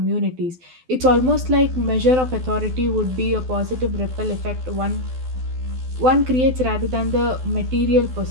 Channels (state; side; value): late; left; 12 ms